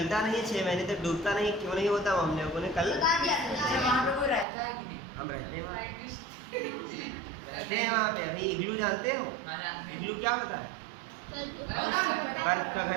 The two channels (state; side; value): drops out; left; at 4.5 s